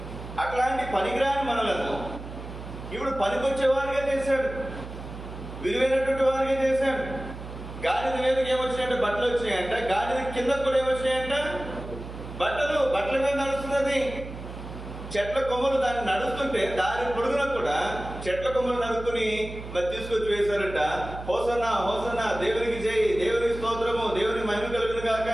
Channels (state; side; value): noise; right; hum, 11 dB below the sound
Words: అట్లాంటి పనికిరాని మనలను ఇప్పుడు పనికొచ్చే వారిగా చేశాడు, విలువైనటువంటి వారిగా చేశాడు. గాడిద మీదకి ఏమొచ్చినాయంటే బట్టలు వచ్చినాయంట. గాడిద కింద కూడా ఏమొచ్చినాయంట? బట్టల మీద నడుస్తున్నది. చెట్ల కొమ్మలు దాన్ని నడుస్తుంటే దారి పొడుగున కూడా చెట్ల కొమ్మలు నడుక్కుని మరి తీసుకొచ్చి వేశారంట. హోసన్నా హోసన్నా, దేవునికి జై, దేవునికి స్తోత్రము, దేవునికి మహిమ కలుగును కాక